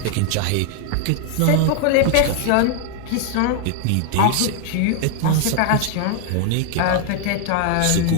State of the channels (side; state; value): both; different; correlation 0.00